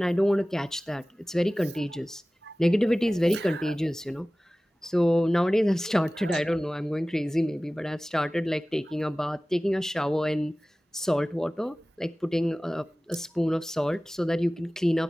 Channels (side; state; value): both; normal; correlation 0.98